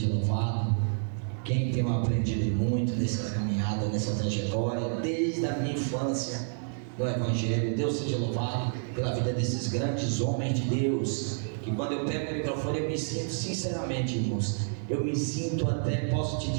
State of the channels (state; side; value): silent; left; 58 dB below the other